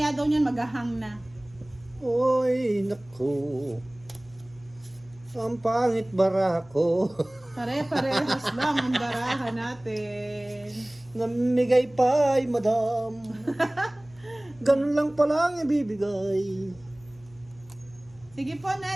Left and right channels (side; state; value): left; noise; hum, 26 dB below the sound